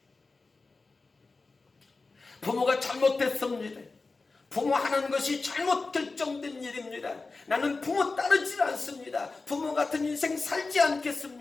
부모가 잘못했습니다. 부모 하는 것이 잘못 결정된 일입니다. 나는 부모 따르지 않습니다. 부모 같은 인생 살지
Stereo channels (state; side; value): quieter; right; 3.8 dB